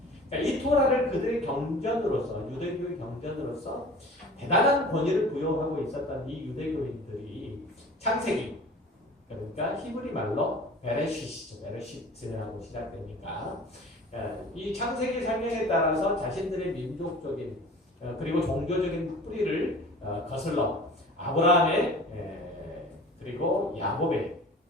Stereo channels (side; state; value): both; normal; correlation 0.42